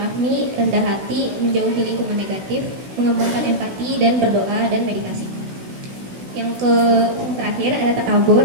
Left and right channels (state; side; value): late; left; 16 ms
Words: rendah hati, menjauhi lingkungan negatif, mengembangkan empati, dan berdoa dan meditasi. Yang terakhir ada